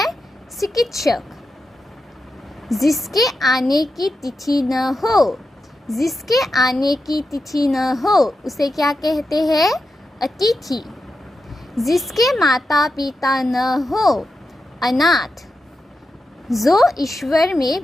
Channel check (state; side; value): normal; both; correlation 0.89